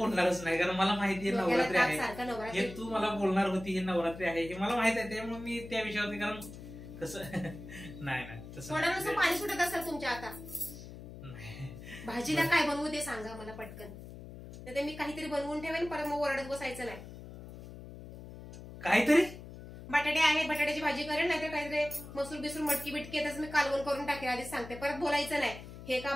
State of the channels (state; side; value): noise; left; hum, 14 dB below the sound